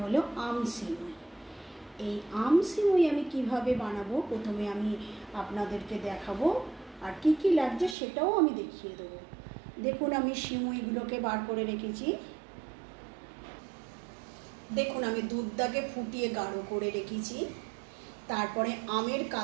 आम सिमुई। এই আম সিমুই আমি কিভাবে বানাবো প্রথমে আমি আপনাদেরকে দেখাবো আর কি কি লাগছে সেটাও আমি দেখিয়ে দেব। দেখুন আমি সিমুইগুলোকে বার করে রেখেছি। দেখুন আমি দুধটাকে ফুটিয়ে গাঢ় করে রেখেছি, তারপরে আমের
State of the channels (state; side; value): drops out; left; at 8.0 s